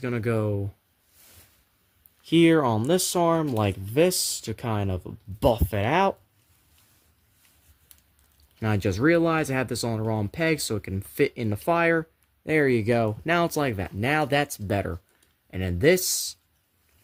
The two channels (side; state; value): both; identical; correlation 1.00